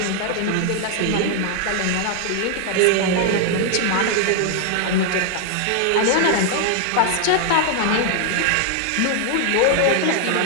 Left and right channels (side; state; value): both; different; correlation 0.00